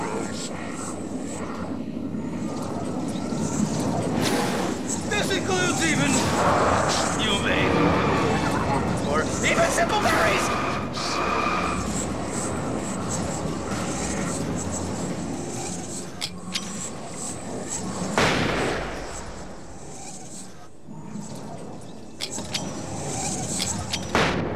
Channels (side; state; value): both; identical; correlation 1.00